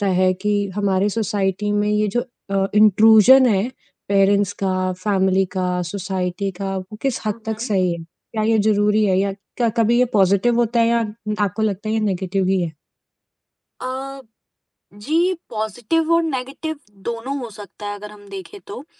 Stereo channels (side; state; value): both; identical; correlation 1.00